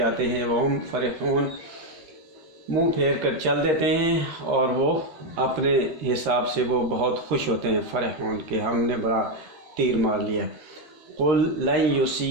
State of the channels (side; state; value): left; late; 13 ms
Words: ہیں، وَهُمْ فَرِحُونَ منہ پھیر کر چل دیتے ہیں، اور وہ اپنے حساب سے وہ بہت خوش ہوتے ہیں، فرحون کہ ہم نے بڑا تیر مار لیا۔ قُلْ لَن